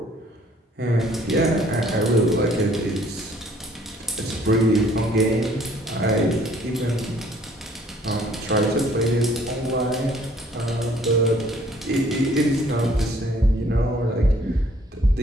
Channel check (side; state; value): both; normal; correlation 0.59